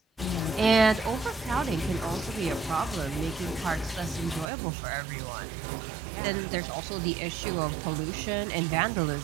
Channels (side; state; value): left; drops out; at 4.5 s